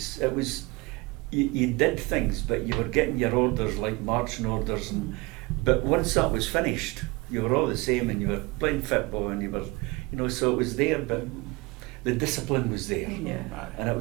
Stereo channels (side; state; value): left; quieter; 24.2 dB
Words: It was you did things, but you were getting your orders like marching orders, but once that was finished, you were all the same, and you were playing football, and you were, you know, so it was there, but the discipline was there, Yeah. and